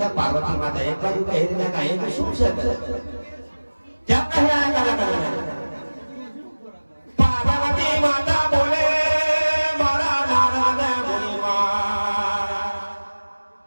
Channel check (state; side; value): inverted; both; correlation -1.00